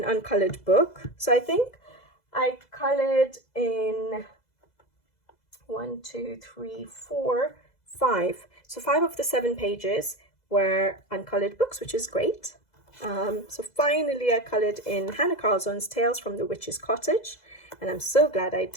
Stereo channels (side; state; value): right; late; 2.0 ms